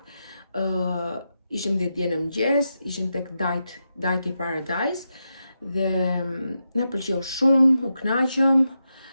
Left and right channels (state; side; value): inverted; both; correlation -0.87